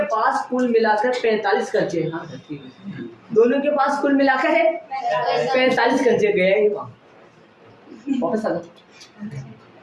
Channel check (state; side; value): identical; both; correlation 1.00